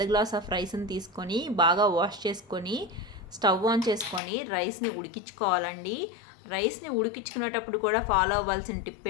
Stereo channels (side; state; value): right; drops out; at 4.2 s